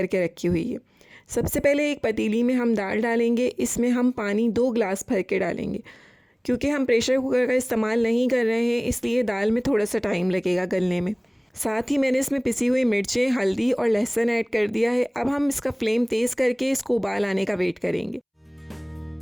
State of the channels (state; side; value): identical; both; correlation 1.00